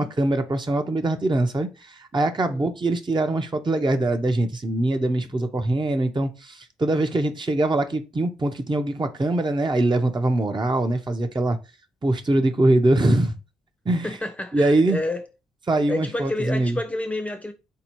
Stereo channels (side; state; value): both; normal; correlation 0.88